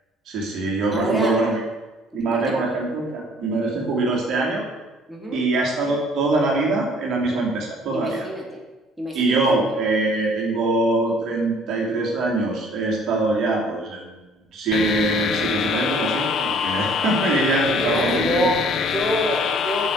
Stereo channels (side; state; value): both; normal; correlation 0.56